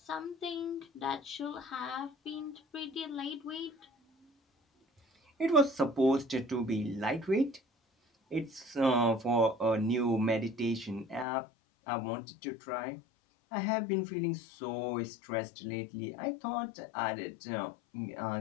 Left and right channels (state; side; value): drops out; right; at 11.2 s